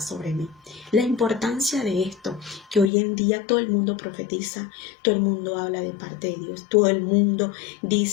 mí. La importancia de esto, que hoy en día todo el mundo profetiza, todo el mundo habla de parte de Dios, todo el mundo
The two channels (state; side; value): drops out; right; at 2.9 s